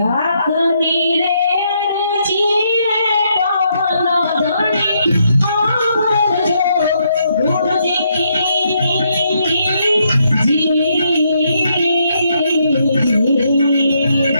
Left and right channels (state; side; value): inverted; both; correlation -0.75